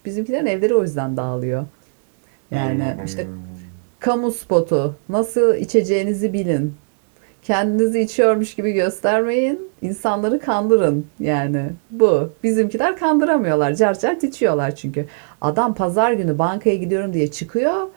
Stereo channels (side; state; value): left; silent; digital silence